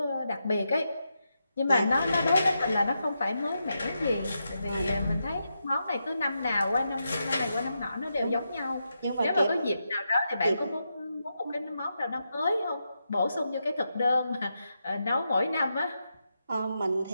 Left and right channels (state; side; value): inverted; both; correlation -0.86